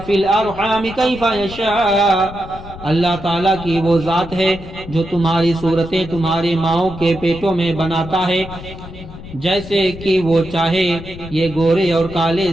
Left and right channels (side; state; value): left; noise; rumble, 14 dB below the sound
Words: الارحام کیف یشاء، اللہ تعالیٰ کی وہ ذات ہے جو تمہاری صورتیں تمہاری ماؤں کے پیٹوں میں بناتا ہے جیسے کہ وہ چاہے۔ یہ گورے اور کالے،